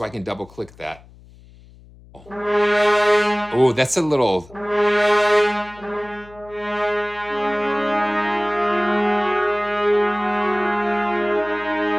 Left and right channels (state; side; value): noise; left; hum, 23 dB below the sound